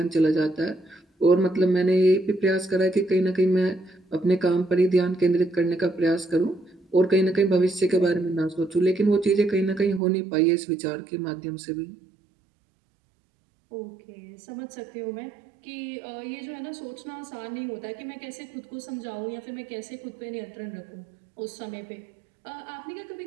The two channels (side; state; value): left; drops out; at 10.0 s